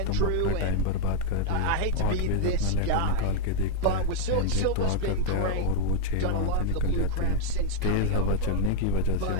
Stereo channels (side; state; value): both; different; correlation 0.00